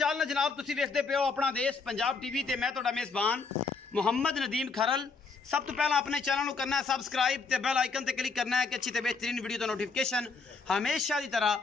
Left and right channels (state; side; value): quieter; right; 4.6 dB